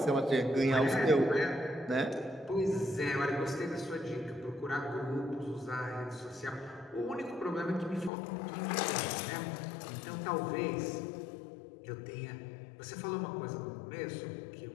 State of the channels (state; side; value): drops out; right; at 8.1 s